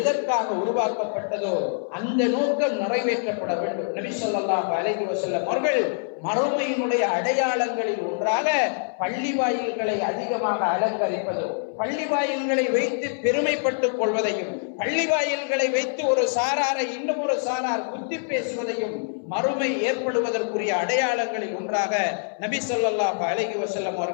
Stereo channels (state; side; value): silent; right; 61 dB below the other